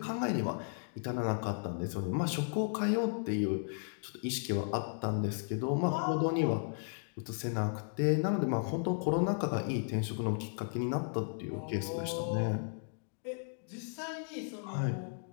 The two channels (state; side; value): silent; right; digital silence